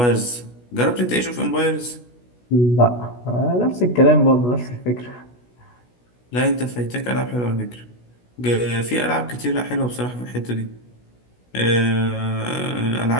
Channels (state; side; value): late; right; 16 ms